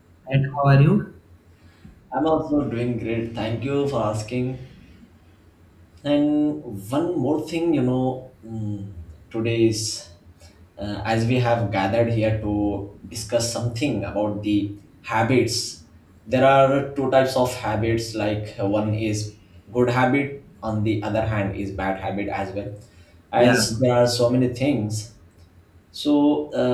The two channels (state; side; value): identical; both; correlation 1.00